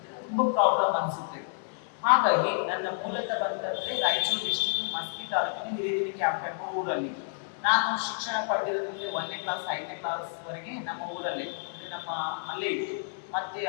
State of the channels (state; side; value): silent; right; 58 dB below the other